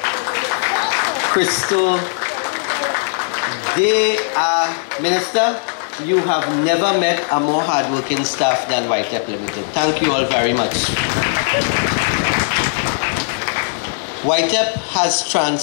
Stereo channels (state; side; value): silent; right; digital silence